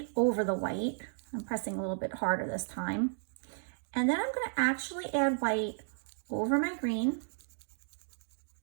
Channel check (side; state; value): left; silent; digital silence